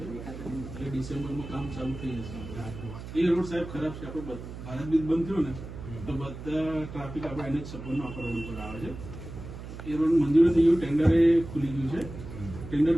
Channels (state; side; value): noise; right; hum, 11 dB below the sound